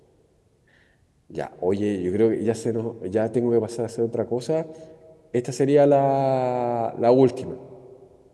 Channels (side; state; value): both; identical; correlation 1.00